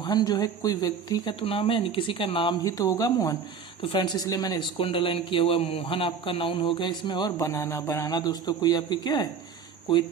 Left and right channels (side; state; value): left; quieter; 6.2 dB